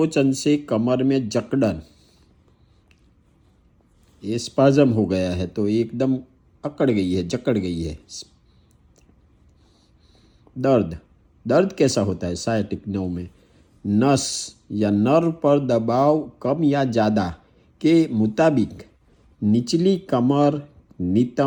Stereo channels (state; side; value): identical; both; correlation 1.00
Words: से कमर में जकड़न। ये स्पाज्म हो गया है तो एकदम अकड़ गई है, जकड़ गई है। दर्द, दर्द कैसा होता है सायटिक नर्व में? नस या नर्व पर दबाव कम या ज़्यादा के मुताबिक निचली कमर,